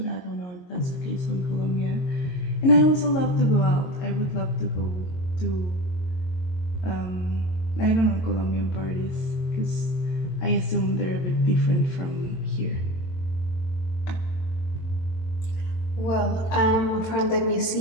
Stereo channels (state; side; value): late; right; 22 ms